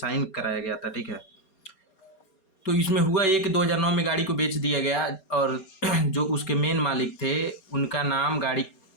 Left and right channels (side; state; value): right; late; 4.3 ms